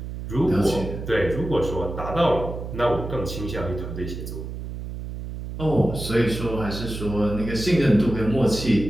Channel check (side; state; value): right; noise; hum, 8 dB below the sound